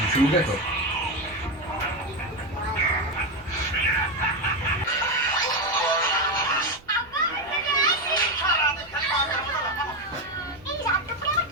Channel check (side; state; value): right; noise; rumble, 26 dB below the sound